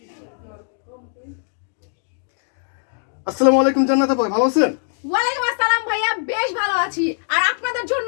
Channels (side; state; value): right; silent; digital silence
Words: আসসালামু আলাইকুম জান্নাত আপা, ভালো আছেন? ওয়ালাইকুম আসসালাম ভাইয়া, বেশ ভালো আছি। আর আপনাদের জন্য